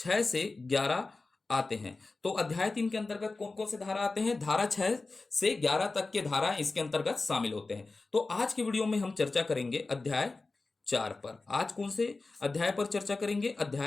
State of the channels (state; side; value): quieter; right; 3.6 dB